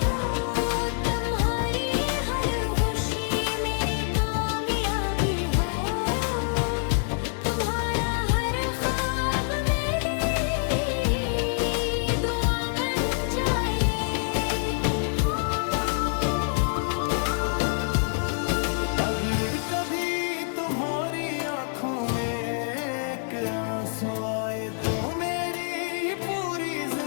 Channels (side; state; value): right; silent; 61 dB below the other